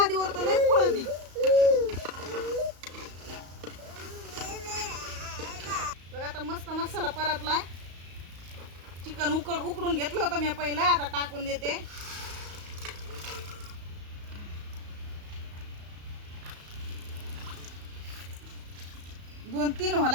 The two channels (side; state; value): left; late; 34 ms